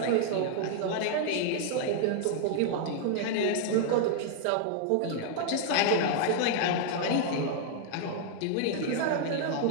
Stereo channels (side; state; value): both; different; correlation -0.01